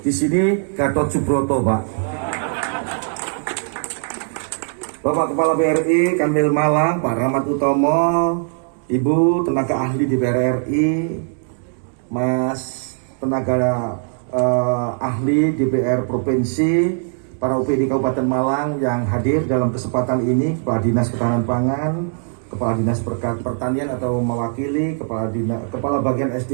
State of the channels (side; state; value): left; silent; 66 dB below the other